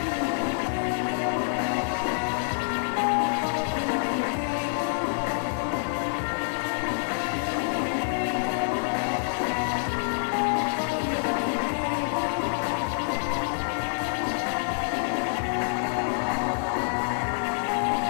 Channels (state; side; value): silent; right; digital silence